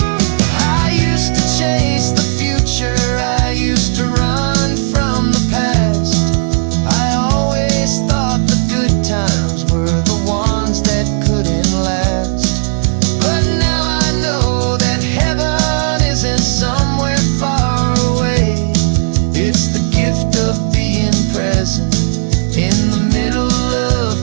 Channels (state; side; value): silent; left; digital silence